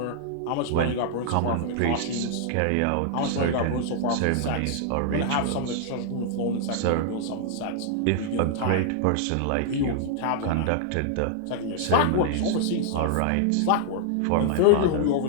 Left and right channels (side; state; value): both; different; correlation -0.01